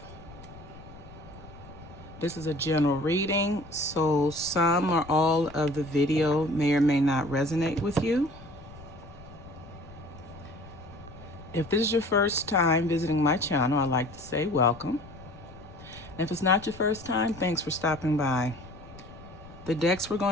This is a general reading, so some or all of the video may or may not resonate with you. If this is your first time visiting my channel, I'd like to say welcome. And if it's not your first time, thanks for stopping by. The decks we're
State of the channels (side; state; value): left; noise; rumble, 18 dB below the sound